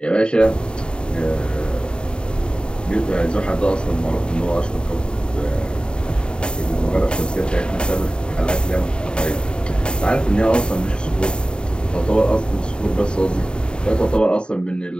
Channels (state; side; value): late; right; 0.050 ms